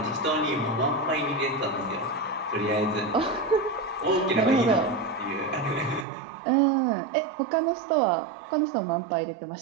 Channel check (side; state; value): left; drops out; at 6.1 s